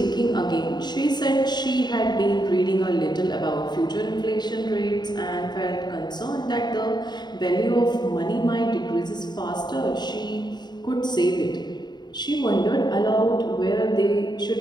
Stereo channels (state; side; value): late; right; 0.21 ms